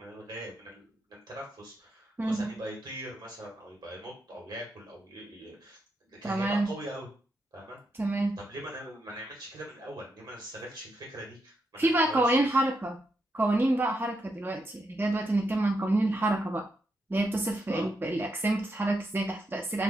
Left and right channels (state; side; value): normal; both; correlation 0.82